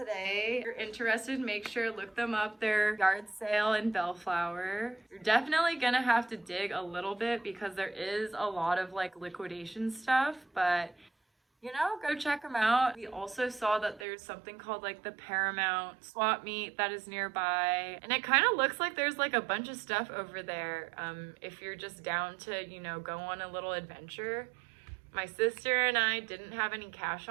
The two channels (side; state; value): left; drops out; at 14.1 s